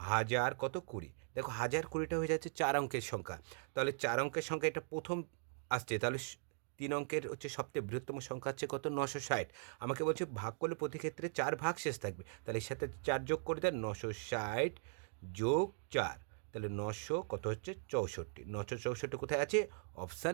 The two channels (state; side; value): silent; left; digital silence